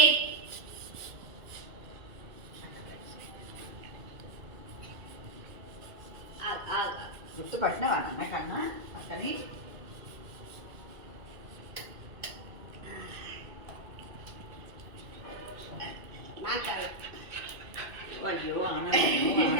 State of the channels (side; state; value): left; late; 2.3 ms